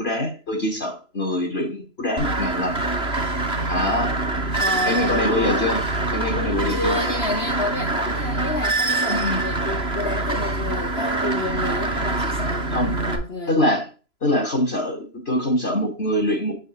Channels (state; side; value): late; right; 3.0 ms